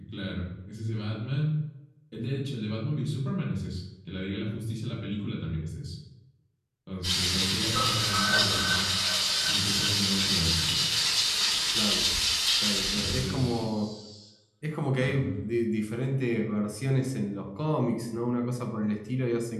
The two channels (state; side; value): identical; both; correlation 1.00